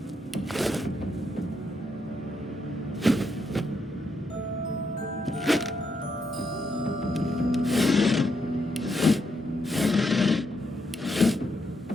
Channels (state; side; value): normal; both; correlation 0.79